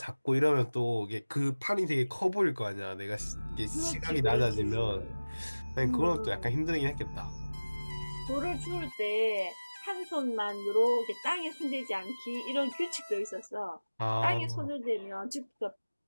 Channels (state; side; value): inverted; both; correlation -1.00